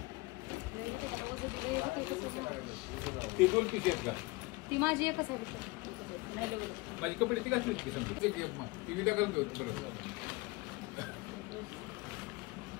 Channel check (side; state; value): right; quieter; 23.9 dB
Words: ती दोन पीस आहेत का ती माझी एकच आहे माझी कपडे ती घातली ती विदा करून देऊ बरोबर